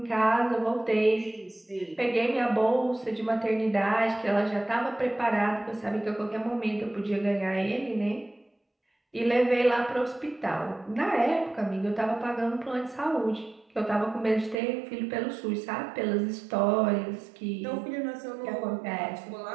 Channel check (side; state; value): left; drops out; at 14.6 s